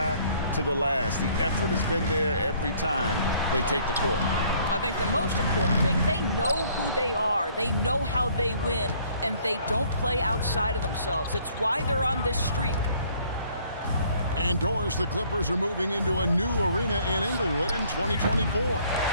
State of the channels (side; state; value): both; inverted; correlation -0.60